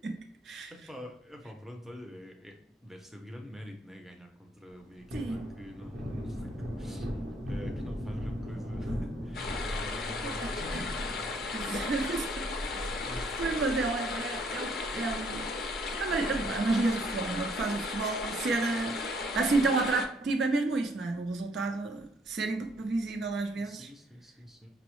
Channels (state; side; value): normal; both; correlation 0.66